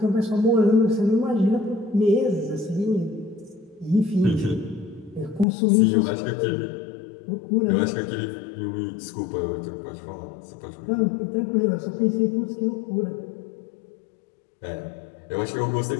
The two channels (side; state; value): right; drops out; at 5.5 s